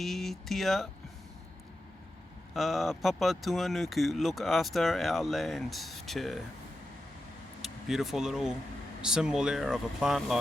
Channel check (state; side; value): normal; both; correlation 0.90